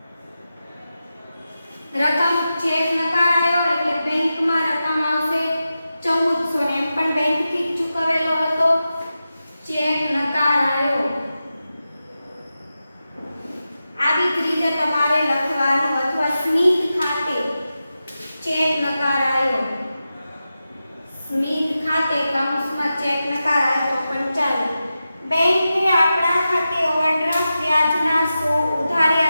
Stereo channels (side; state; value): both; inverted; correlation -0.92